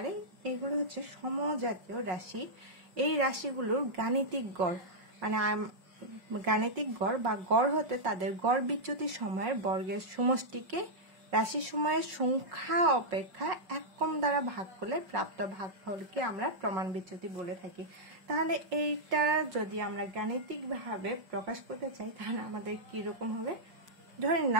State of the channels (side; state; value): left; late; 5.4 ms